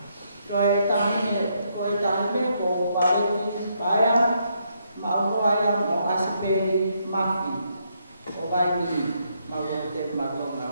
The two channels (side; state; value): both; inverted; correlation -0.76